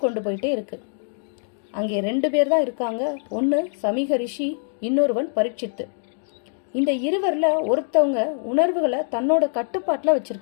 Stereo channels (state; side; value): silent; right; digital silence